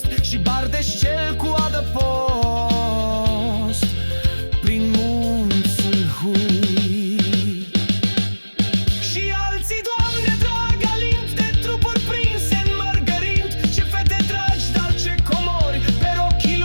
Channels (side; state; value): both; inverted; correlation -1.00